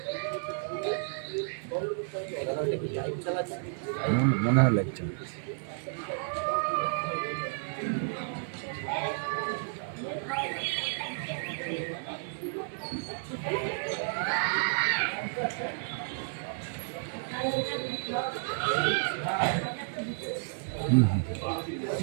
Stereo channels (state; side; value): silent; left; digital silence